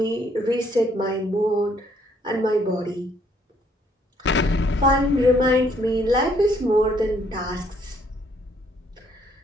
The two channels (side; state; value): both; normal; correlation 0.67